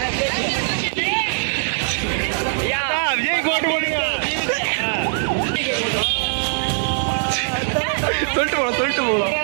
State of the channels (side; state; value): left; silent; digital silence